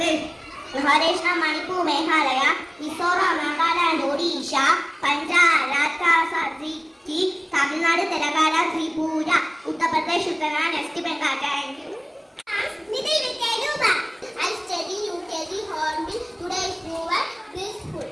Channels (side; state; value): both; identical; correlation 1.00